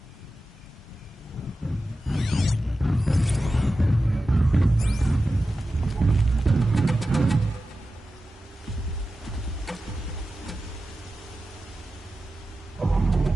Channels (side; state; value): both; normal; correlation 0.93